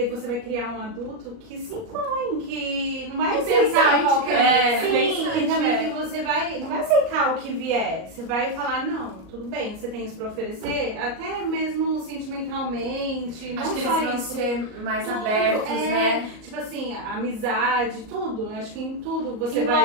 você vai criar um adulto que se impõe, que não vai aceitar Pensante, qualquer. Sim, Sim, também é. que você vai. Não vai aceitar o que vier. Você vai falar, não, tudo bem, você tem isso pra oferecer, até mesmo sentimentalmente. Não Acho que só eles vão isso. ser mais Tudo, abertos, é, né? Tipo assim, amizade, tudo. Acho que em tudo você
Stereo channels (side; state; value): left; late; 38 ms